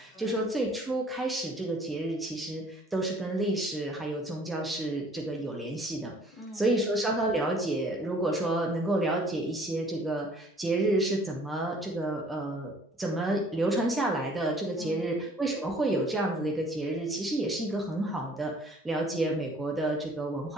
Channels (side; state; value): both; normal; correlation 0.56